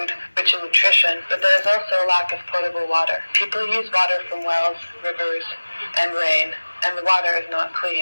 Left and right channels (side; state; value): both; inverted; correlation -1.00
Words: rich in nutrition, but there is also a lack of potable water. People use water from wells, rivers, and rain, and the water is not